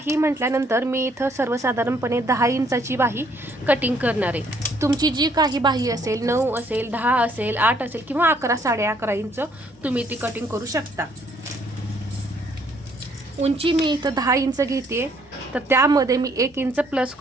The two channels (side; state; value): both; normal; correlation 0.66